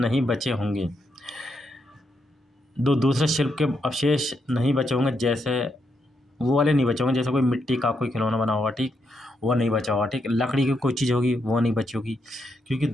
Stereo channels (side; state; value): both; normal; correlation 0.80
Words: बचे होंगे। दूसरे शिल्प के अवशेष नहीं बचे होंगे, जैसे वो वाले नहीं बचे होंगे, जैसे कोई मिट्टी का कोई खिलौना बना होगा, ठीक, वो नहीं बचा होगा, ठीक। लकड़ी की कोई चीज़ होगी, वो नहीं बची होगी, क्योंकि